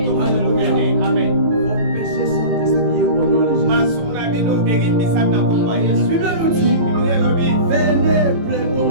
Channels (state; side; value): late; left; 18 ms